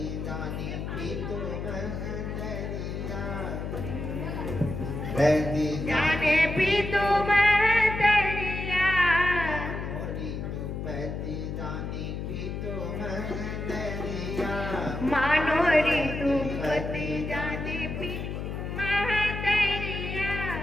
दानी पीतो महंदरिया जाने पीतू महतरिया मोरी तू पति दानी पीतो महंदरिया मानो ऋतु पति जाने पी महतरिया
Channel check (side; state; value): left; noise; hum, 5 dB below the sound